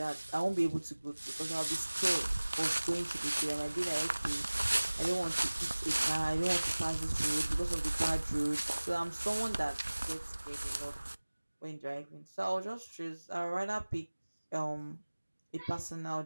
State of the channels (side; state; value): both; inverted; correlation -1.00